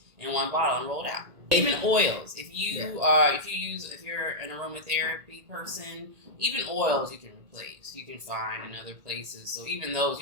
in one bottle and rolled out. Even oils. If you're an aromatherapy person, even oils you can replace. You can find in other places. So even those,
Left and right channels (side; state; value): left; late; 1.8 ms